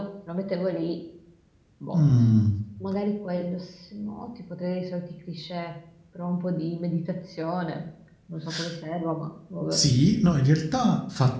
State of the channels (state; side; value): identical; both; correlation 1.00